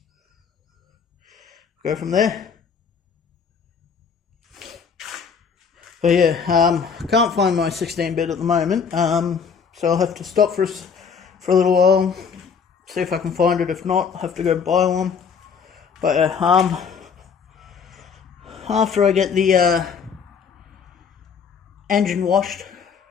Go from there. But yeah, I can't find my 16-bit at the moment, so I'll have to stop for a little while. See if I can find it. If not, I'll have to go buy one. But after I get the engine washed,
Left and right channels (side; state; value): right; quieter; 6.2 dB